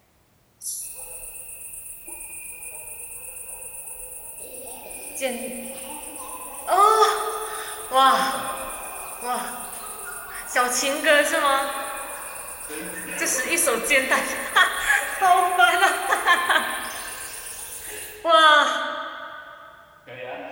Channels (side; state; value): both; identical; correlation 1.00